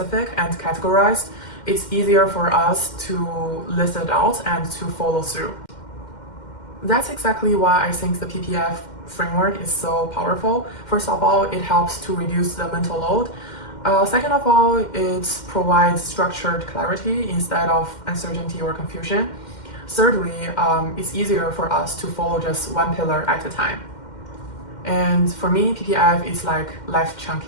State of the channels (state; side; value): late; right; 2.1 ms